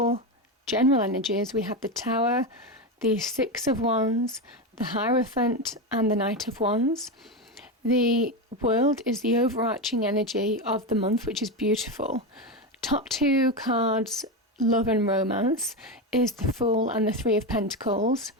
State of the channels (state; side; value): normal; both; correlation 0.15